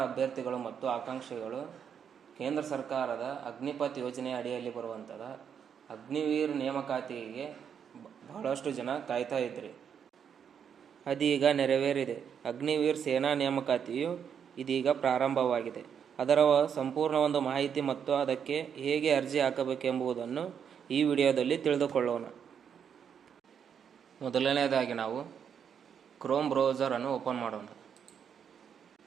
ಅಭ್ಯರ್ಥಿಗಳು ಮತ್ತು ಆಕಾಂಕ್ಷಿಗಳು ಕೇಂದ್ರ ಸರ್ಕಾರದ ಅಗ್ನಿಪಥ್ ಯೋಜನೆ ಅಡಿಯಲ್ಲಿ ಬರುವಂಥದ ಅಗ್ನಿವೀರ್ ನೇಮಕಾತಿಗೆ ಬಹಳಷ್ಟು ಜನ ಕಾಯ್ತಾ ಇದ್ರಿ. ಅದೀಗ ನೆರವೇರಿದೆ. ಅಗ್ನಿವೀರ್ ಸೇನಾ ನೇಮಕಾತಿಯು ಇದೀಗ ಪ್ರಾರಂಭವಾಗಿದೆ. ಅದರ ಸಂಪೂರ್ಣ ಒಂದು ಮಾಹಿತಿ ಮತ್ತು ಅದಕ್ಕೆ ಹೇಗೆ ಅರ್ಜಿ ಹಾಕಬೇಕೆಂಬುದನ್ನು ಈ ವಿಡಿಯೋದಲ್ಲಿ ತಿಳಿದುಕೊಳ್ಳೋಣ. ಮೊದಲನೇದಾಗಿ ನಾವು ಕ್ರೋಮ್ ಬ್ರೌಸರನ್ನು ಓಪನ್ ಮಾಡೋಣ.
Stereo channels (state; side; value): quieter; left; 7.7 dB